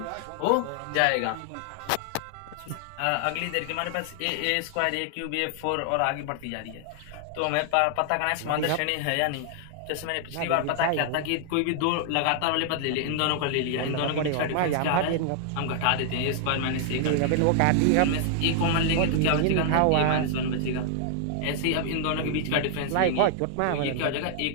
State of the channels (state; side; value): different; both; correlation 0.00